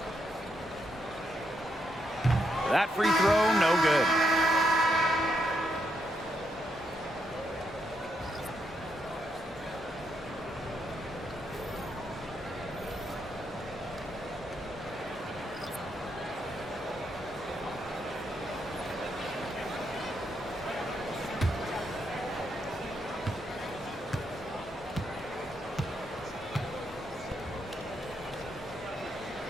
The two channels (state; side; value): normal; both; correlation 0.79